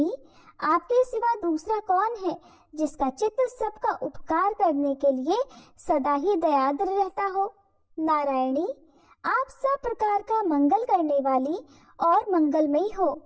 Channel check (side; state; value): both; identical; correlation 1.00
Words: आपके सिवा दूसरा कौन है जिसका चित्त सबका उपकार करने के लिए सदा ही दयाद्र रहता हो। नारायणी, आप सब प्रकार का मंगल करने वाली और मंगलमयी हो।